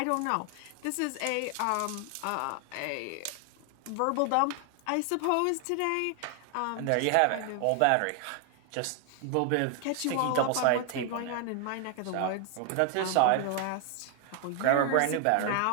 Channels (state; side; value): different; both; correlation 0.00